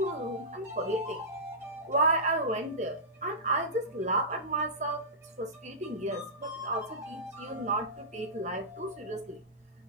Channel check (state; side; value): normal; both; correlation -0.17